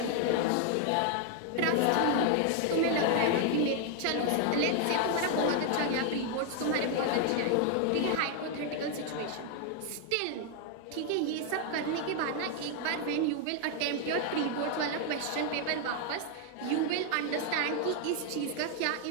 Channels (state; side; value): different; both; correlation 0.00